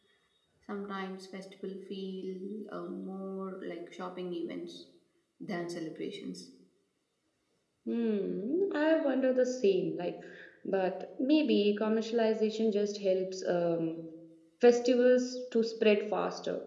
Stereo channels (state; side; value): identical; both; correlation 1.00